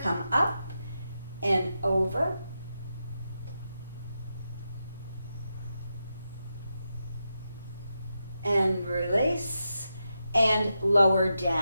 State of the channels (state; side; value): inverted; both; correlation -0.88